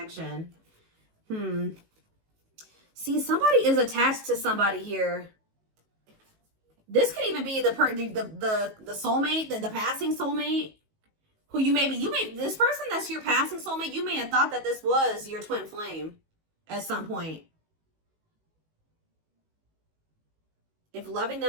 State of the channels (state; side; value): late; left; 19 ms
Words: See, somebody is attached to somebody here. This could even be the soulmate, the passing soulmate, who this person that's your passing soulmate, you may have thought that this was your twin flame at some point. If loving